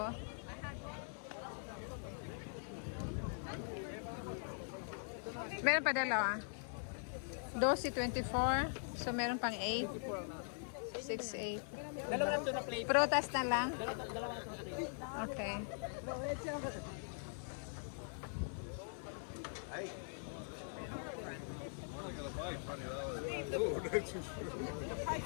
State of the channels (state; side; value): silent; right; digital silence